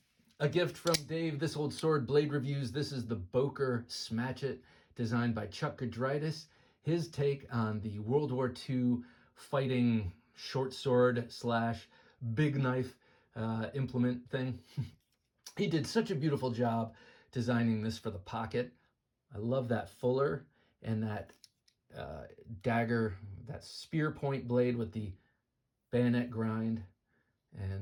A gift from Dave, This Old Sword Blade Reviews. This is the Boker Smatch, designed by Chuck Gudritis. His take on the World War II fighting short sword / big knife implement thing. He did such a beautiful job designing this for the pocket. I love that fuller and that dagger, that spear point blade with the bayonet grind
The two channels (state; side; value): identical; both; correlation 1.00